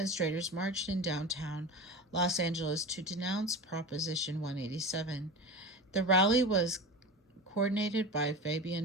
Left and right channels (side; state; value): both; normal; correlation 0.28